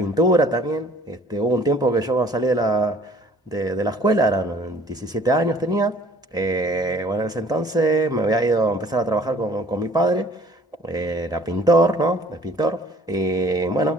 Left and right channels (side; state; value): both; normal; correlation 0.54